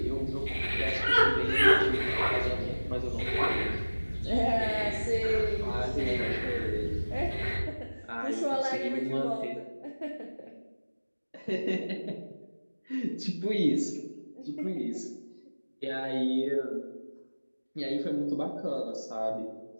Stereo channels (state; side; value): inverted; both; correlation -1.00